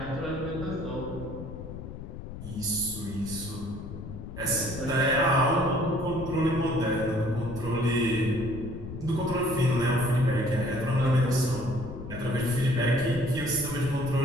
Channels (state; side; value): noise; left; rumble, 10 dB below the sound